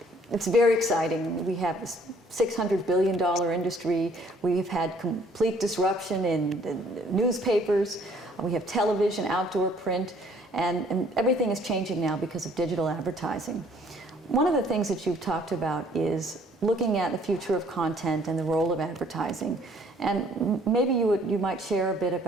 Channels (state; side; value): normal; both; correlation 0.60